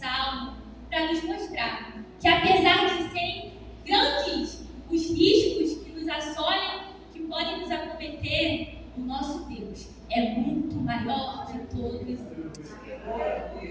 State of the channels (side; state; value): both; identical; correlation 1.00